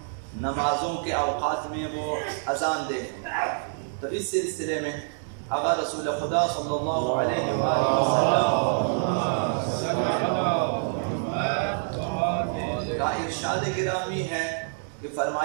نمازوں کے اوقات میں وہ اذان دے، تو اس سلسلے میں اگر رسول خدا صلی اللہ علیہ وآلہ وسلم کا ارشاد گرامی ہے کہ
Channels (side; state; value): left; silent; digital silence